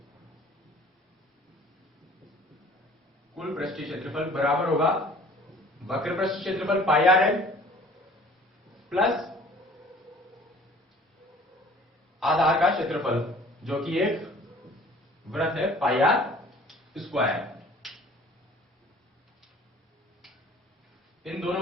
कुल पृष्ठीय क्षेत्रफल बराबर होगा वक्र पृष्ठ क्षेत्रफल पाई आर एल प्लस आधार का क्षेत्रफल जो कि एक वृत्त है पाई आर स्क्वायर। इन दोनों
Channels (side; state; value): both; normal; correlation 0.50